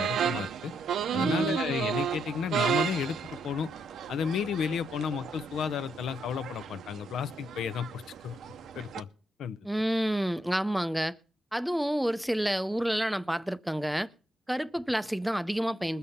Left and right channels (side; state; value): both; normal; correlation 0.79